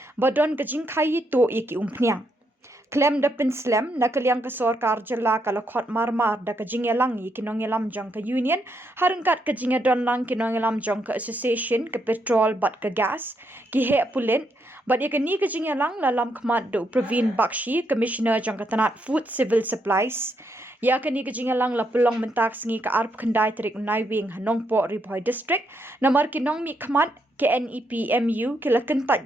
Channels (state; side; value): normal; both; correlation 0.78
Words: badon ka jingkhaii to iki umphniang Khlem da Khlem na kaliang ka sorkar Jylla kala khot marmar da ka jingelang yi kinongelam jong ka union harengkat ka jingedon lang kinongelam jong ka association ka petrol bat ka gas ki he Pulit bat ya ka ni ka jingelang lalam khmat do Praveen Bakshi commissioner jong ka tanat food civil supplies ya ka ni ka jingelang la pelong mentak sngi ka Tarik Naiwieng Nongpoh Ri-Bhoi District namar ki nongmi khmat ke Nepmu kila